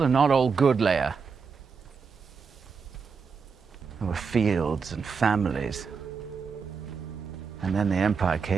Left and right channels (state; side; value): quieter; left; 5.6 dB